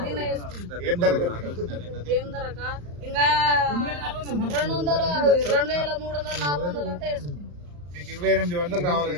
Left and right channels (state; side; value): late; left; 34 ms